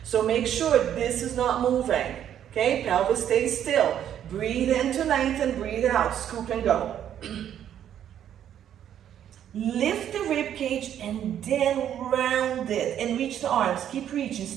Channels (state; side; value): quieter; left; 10.1 dB